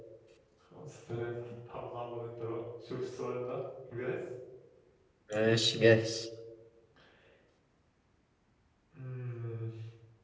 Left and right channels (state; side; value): identical; both; correlation 1.00